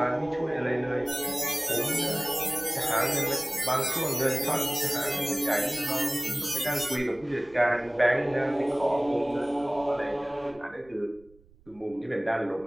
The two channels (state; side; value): noise; right; rumble, 28 dB below the sound